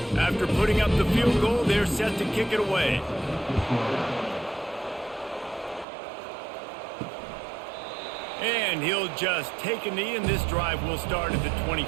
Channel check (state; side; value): drops out; left; at 5.9 s